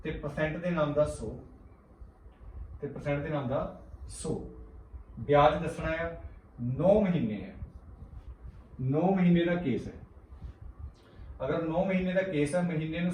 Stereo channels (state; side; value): identical; both; correlation 1.00